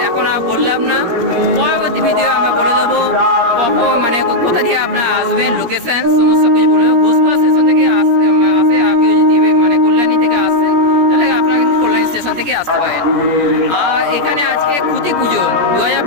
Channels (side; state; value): left; late; 17 ms